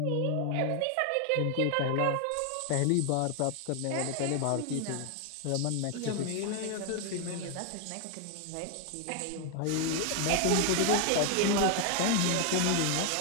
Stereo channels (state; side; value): different; both; correlation 0.01